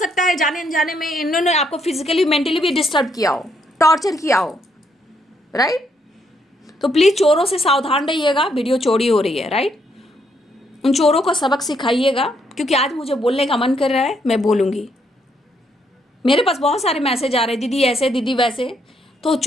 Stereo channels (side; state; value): both; normal; correlation 0.73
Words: है जाने अनजाने में इन्होंने आपको फिजिकली मेंटली भी डिस्टर्ब किया हो, टॉर्चर किया हो, राइट। तो प्लीज चोरों से सावधान रहिएगा, वीडियो चोरी हो रही है, राइट। उन चोरों को सबक सिखाइएगा, क्योंकि आज मुझे बोलने का मन कर रहा है, मैं बोलूंगी। मेरे पास बहुत सारे मैसेज आ रहे हैं, दीदी ऐसे दीदी वैसे, तो